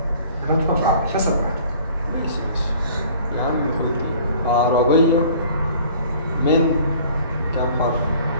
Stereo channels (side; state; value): both; inverted; correlation -0.51